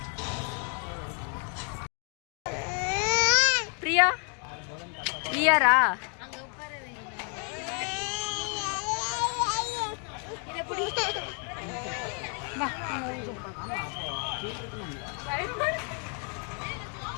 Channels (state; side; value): quieter; right; 40.0 dB